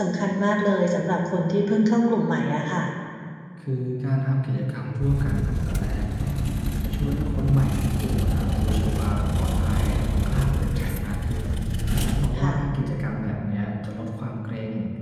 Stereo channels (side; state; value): both; identical; correlation 1.00